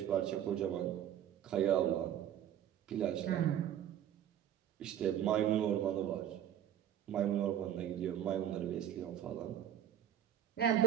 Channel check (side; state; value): left; quieter; 10.5 dB